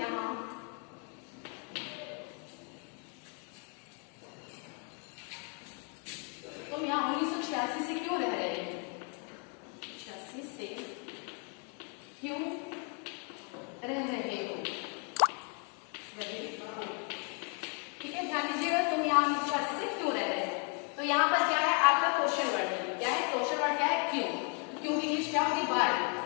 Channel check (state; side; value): quieter; right; 38.5 dB